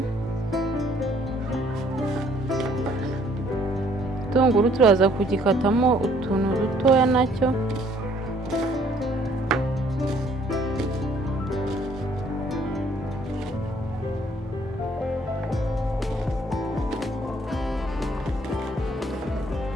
Igitunguru turaza kugikatamo utuntu dutoya nacyo.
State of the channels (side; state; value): both; normal; correlation 0.62